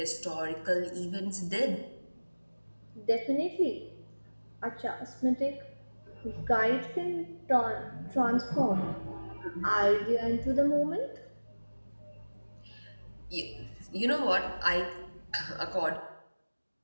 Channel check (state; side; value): inverted; both; correlation -1.00